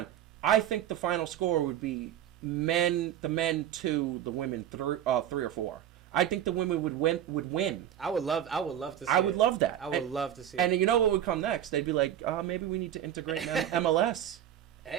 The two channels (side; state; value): left; quieter; 10.8 dB